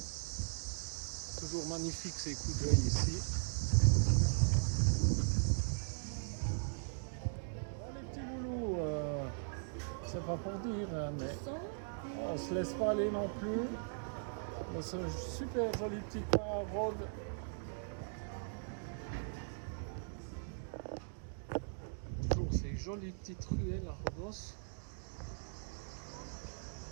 Toujours magnifique ces coups d'œil ici. Bon les petits loulous, c'est pas pour dire, hein, mais on se laisse pas aller non plus. Dans ce super joli petit coin à Rhodes. Toujours ces jolies petites ruelles à Rhodos.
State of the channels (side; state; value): left; silent; digital silence